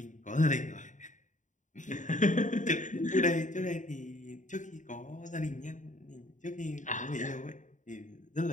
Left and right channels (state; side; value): late; right; 0.36 ms